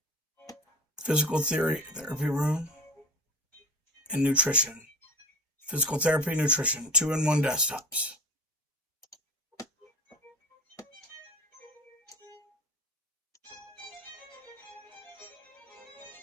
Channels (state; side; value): normal; both; correlation 0.35